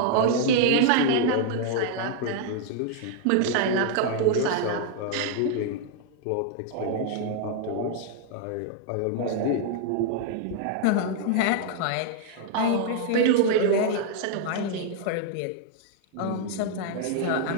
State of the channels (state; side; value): different; both; correlation -0.01